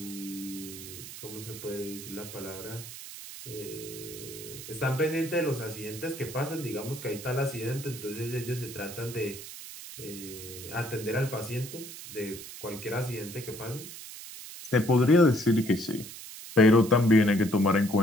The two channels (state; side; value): noise; right; hiss, 12 dB below the sound